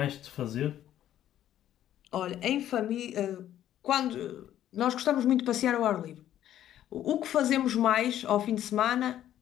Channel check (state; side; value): quieter; right; 11.7 dB